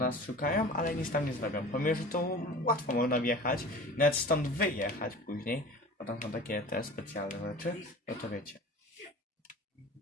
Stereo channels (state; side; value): normal; both; correlation 0.38